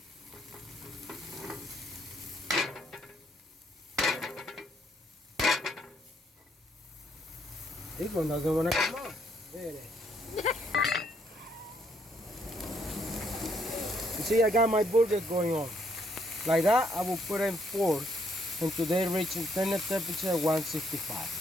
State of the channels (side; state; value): both; normal; correlation 0.70